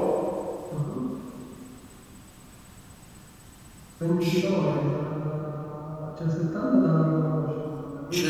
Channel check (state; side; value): identical; both; correlation 1.00